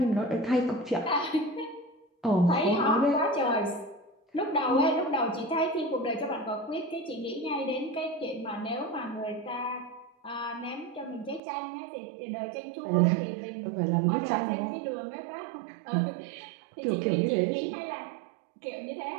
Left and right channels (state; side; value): drops out; left; at 11.4 s